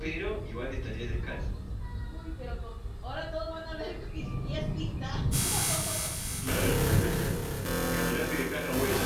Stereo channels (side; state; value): both; identical; correlation 1.00